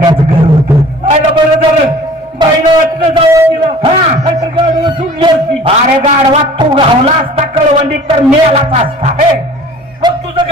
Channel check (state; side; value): normal; both; correlation 0.47